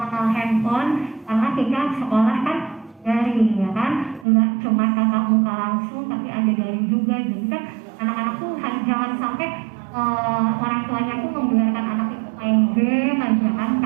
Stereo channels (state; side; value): drops out; left; at 4.2 s